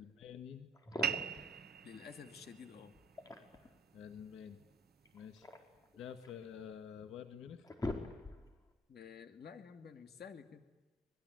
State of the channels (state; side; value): normal; both; correlation 0.53